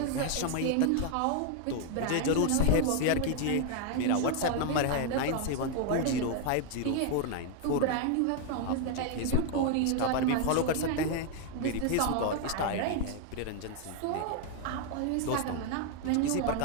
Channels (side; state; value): both; different; correlation 0.00